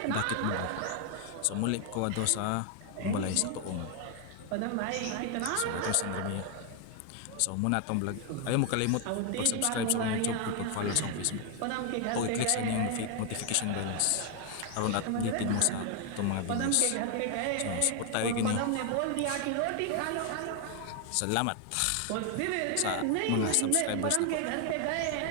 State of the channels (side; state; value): both; different; correlation 0.00